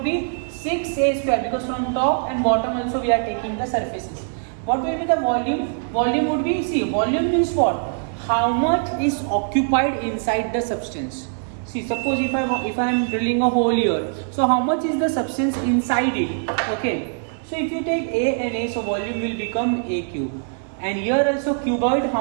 be 6A square, because from top and bottom also we are taking the surfaces. What will be the volume? Volume would be, see, volume means what? How much is occupied inside the substance. See, suppose if I am drilling a hole here, so how much is the substance inside it? Okay, so if you take A and A, so volume will become A cube. And here also cuboid,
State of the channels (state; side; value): silent; left; 61 dB below the other